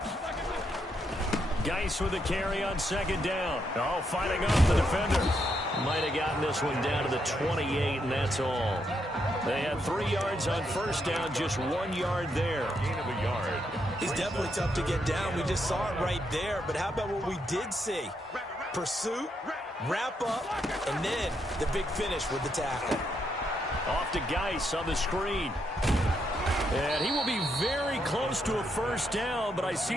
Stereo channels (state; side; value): normal; both; correlation 0.78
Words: Geis with a carry on 2nd down. Oh, fighting off the defender. Might have gotten this one down to the 28, and that's all. They had 3 yards on 1st down, just 1 yard there. Gain of a yard. He's definitely tough to get down. We just saw it right there. But how about what we did see? Pursuit, wrap up, and then the big finish with the tackle. Off to Geis on the screen. And he will be very close to a 1st down, but I